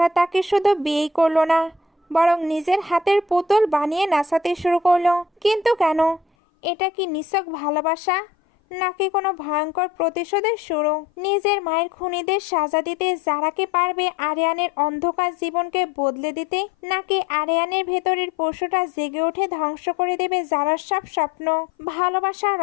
তাকে শুধু বিয়েই করলো না, বরং নিজের হাতের পুতুল বানিয়ে নাচাতে শুরু করলো। কিন্তু কেন? এটা কি নিছক ভালোবাসা, নাকি কোনো ভয়ঙ্কর প্রতিশোধের শুরু? নিজের মায়ের খুনিদের সাজা দিতে যারাকে পারবে আরিয়ানের অন্ধকার জীবনকে বদলে দিতে, নাকি আরিয়ানের ভেতরের পশুটা জেগে উঠে ধ্বংস করে দেবে যারার সব স্বপ্ন? ভালোবাসা,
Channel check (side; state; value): right; drops out; at 6.2 s